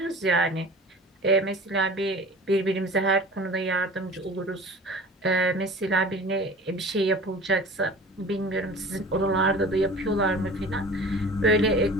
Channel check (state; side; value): normal; both; correlation 0.40